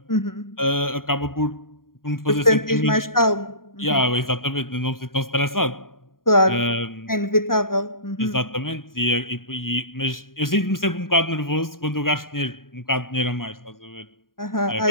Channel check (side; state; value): right; late; 0.91 ms